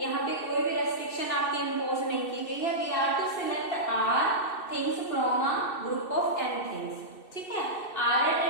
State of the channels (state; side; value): late; right; 2.6 ms